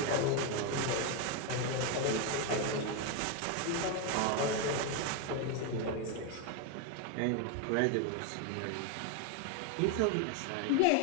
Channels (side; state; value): both; different; correlation 0.01